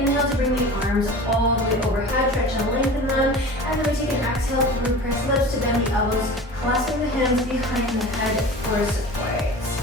to bring the arms all the way overhead, stretch and lengthen them. And then we take an exhale through pursed lips to bend the elbows, clasping the hands behind the head for support.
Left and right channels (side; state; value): both; normal; correlation 0.36